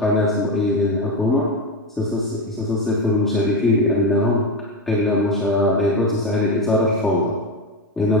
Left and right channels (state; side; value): normal; both; correlation 0.14